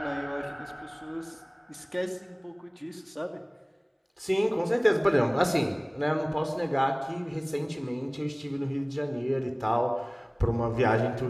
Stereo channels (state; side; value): identical; both; correlation 1.00